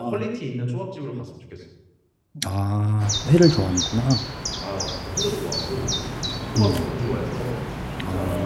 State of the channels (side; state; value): both; identical; correlation 1.00